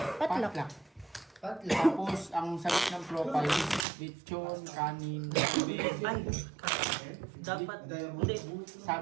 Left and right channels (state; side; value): drops out; left; at 3.9 s